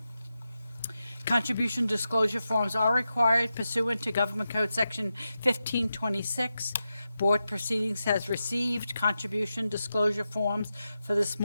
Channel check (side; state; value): both; inverted; correlation -0.90